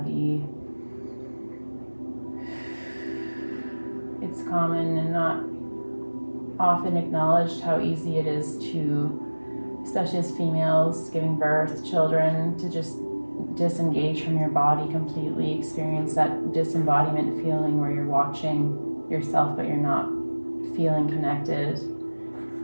It's common and not often acknowledged how easy it is to, especially as females giving birth, children, to just disengage from your body completely, experience that disembodiment feeling where you're watching yourself but you're not feeling connected.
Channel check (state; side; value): inverted; both; correlation -1.00